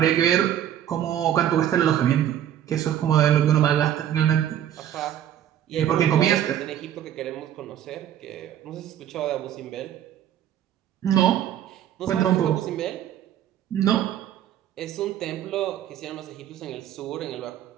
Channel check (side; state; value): left; quieter; 10.8 dB